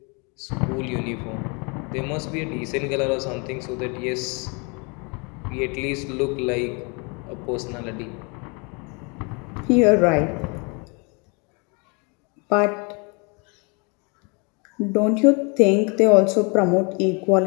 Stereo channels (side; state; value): right; quieter; 32.1 dB